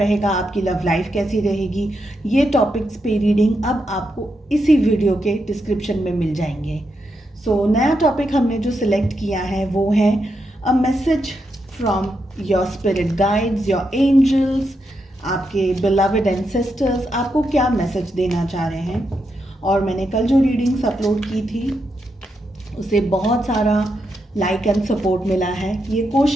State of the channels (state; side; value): normal; both; correlation 0.83